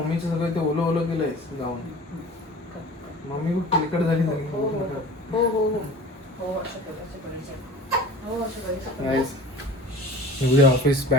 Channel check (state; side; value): normal; both; correlation 0.41